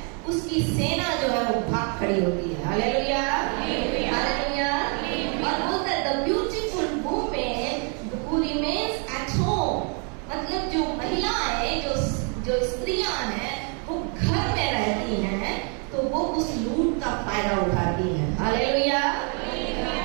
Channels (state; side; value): quieter; left; 38.6 dB